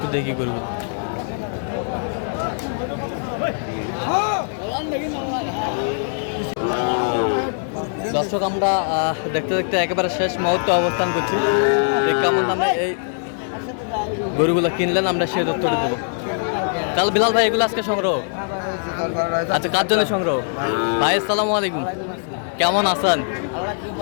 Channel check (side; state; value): right; silent; digital silence